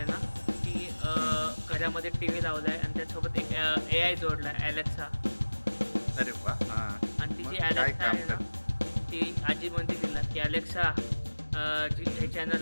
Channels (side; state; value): both; inverted; correlation -1.00